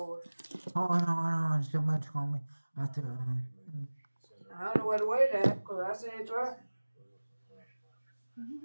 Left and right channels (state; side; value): inverted; both; correlation -1.00